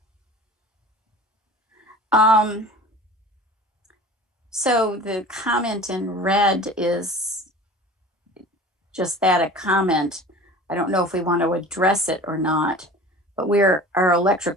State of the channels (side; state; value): both; normal; correlation 0.40